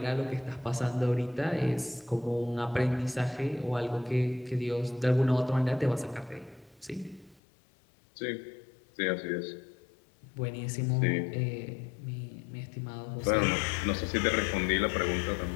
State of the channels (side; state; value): right; drops out; at 7.4 s